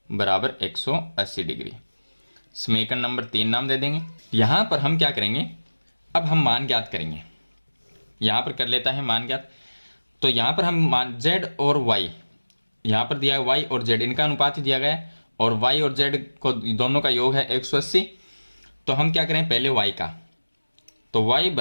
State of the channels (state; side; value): inverted; both; correlation -1.00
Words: बराबर 180 डिग्री। समीकरण नंबर 3 नाम दे देंगे। यहां पर हम क्या करेंगे, अब हम मान ज्ञात करेंगे। यहां पर कर लेता है मान ज्ञात। तो यहां पर हम मान z और y, यहां पर दिया है y और z, इनका अनुपात ही दिया गया है और y और z को दोनों का योग है 180। तो हम क्या करें, पहले y का, तो y